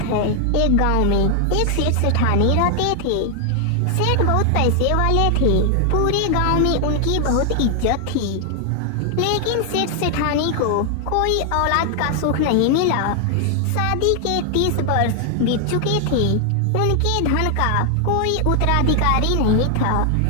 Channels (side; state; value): both; different; correlation 0.00